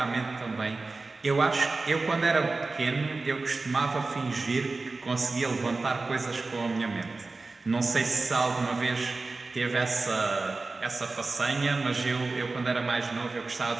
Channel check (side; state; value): left; quieter; 3.6 dB